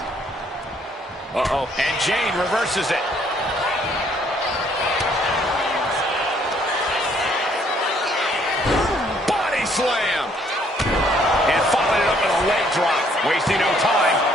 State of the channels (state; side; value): normal; both; correlation 0.65